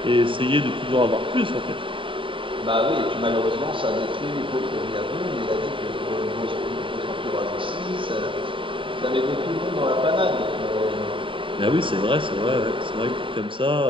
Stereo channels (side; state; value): left; late; 0.25 ms